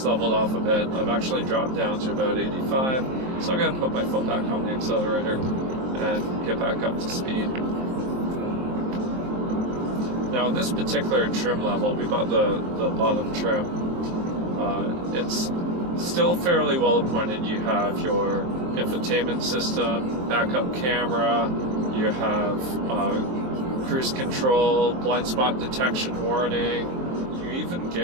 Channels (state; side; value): late; left; 23 ms